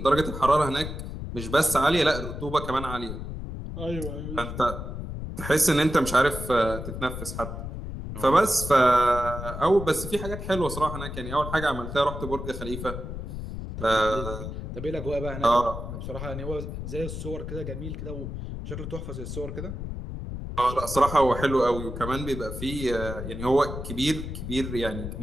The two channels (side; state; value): left; noise; rumble, 7 dB below the sound